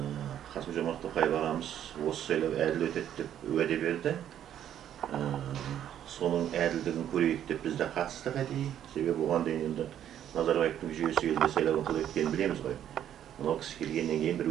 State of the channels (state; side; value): quieter; left; 10.5 dB